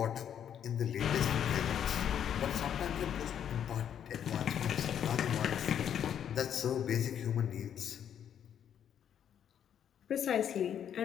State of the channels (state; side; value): quieter; right; 9.2 dB